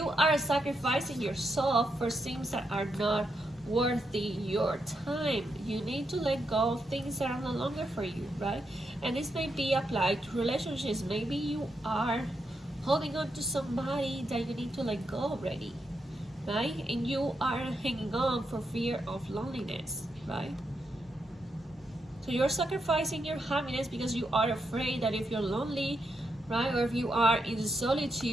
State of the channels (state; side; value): normal; both; correlation 0.83